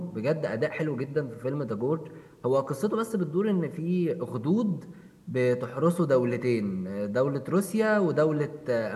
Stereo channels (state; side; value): identical; both; correlation 1.00